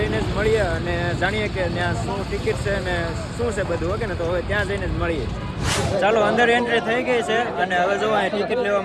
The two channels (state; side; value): identical; both; correlation 1.00